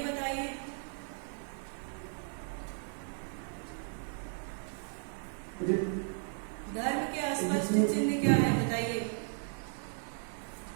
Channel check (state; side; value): silent; left; 54 dB below the other